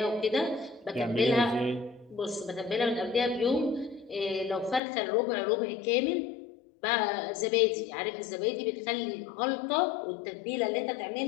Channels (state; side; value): drops out; right; at 4.8 s